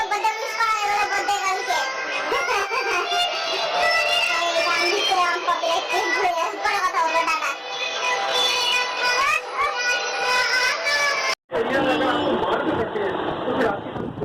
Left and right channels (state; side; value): identical; both; correlation 1.00